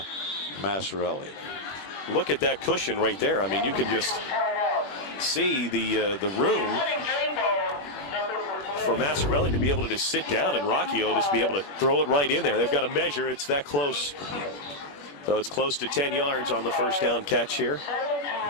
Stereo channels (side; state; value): right; late; 21 ms